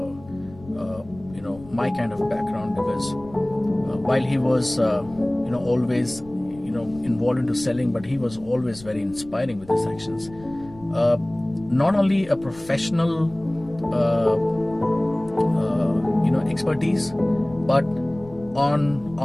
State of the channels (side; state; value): left; noise; rumble, 21 dB below the sound